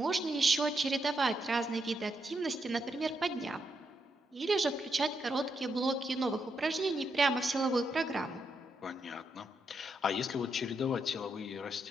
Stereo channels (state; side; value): normal; both; correlation 0.81